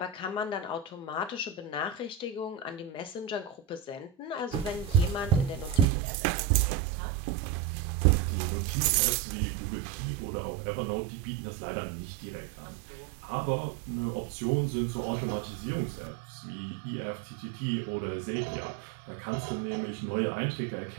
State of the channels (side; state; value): left; drops out; at 5.9 s